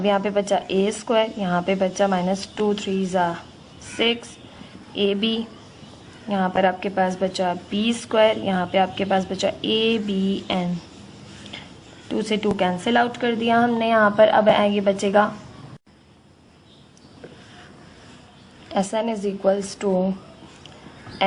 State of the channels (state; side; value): identical; both; correlation 1.00